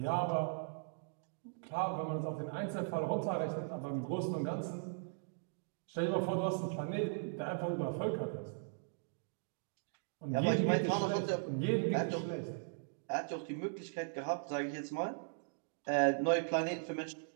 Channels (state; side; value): silent; left; digital silence